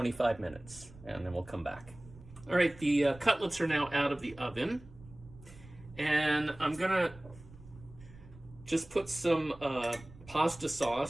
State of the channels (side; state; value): right; noise; rumble, 20 dB below the sound